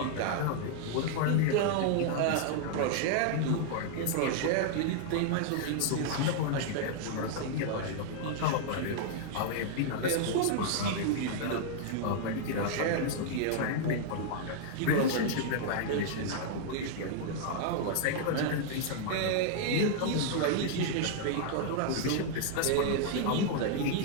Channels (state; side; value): different; both; correlation -0.01